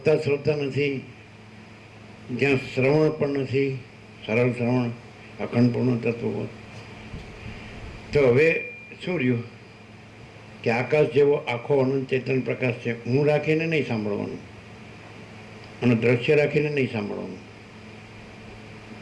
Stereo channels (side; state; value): both; identical; correlation 1.00